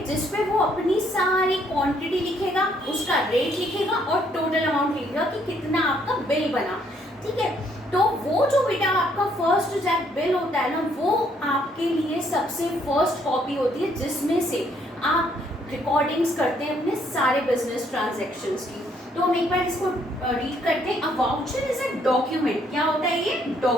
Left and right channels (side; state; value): both; normal; correlation 0.68